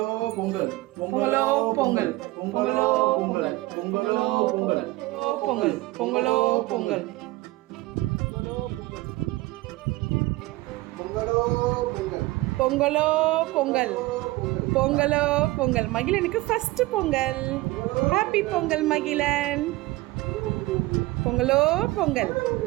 பொங்கல், பொங்கலோ பொங்கல், பொங்கலோ பொங்கல், பொங்கலோ பொங்கல், பொங்கல், பொங்கலோ பொங்கல், பொங்கலோ பொங்கல், பொங்கலோ பொங்கல். மகிழனுக்கு ஃபர்ஸ்ட் பொங்கல். ஹாப்பி பொங்கல் மகிழன். பொங்கலோ பொங்கல்.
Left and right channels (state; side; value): quieter; left; 19.8 dB